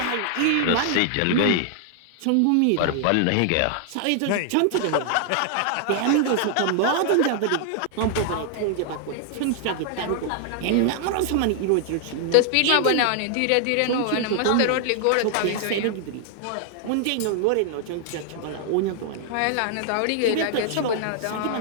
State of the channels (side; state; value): both; different; correlation 0.00